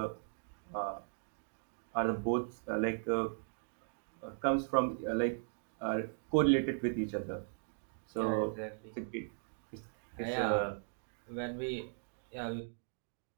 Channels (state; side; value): silent; left; digital silence